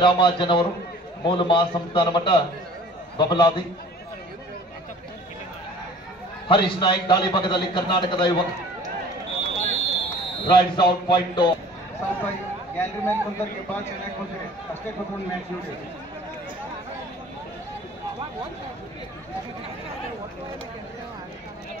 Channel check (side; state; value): both; normal; correlation 0.48